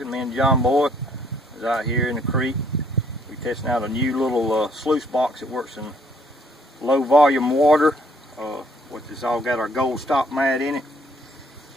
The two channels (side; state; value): both; normal; correlation 0.64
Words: Me and John Boy is out here in the creek. We're testing out a new little sluice box that works in low volume water. Which has all got our gold stop mat in it.